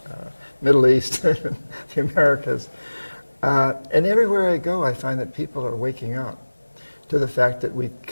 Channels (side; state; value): both; inverted; correlation -1.00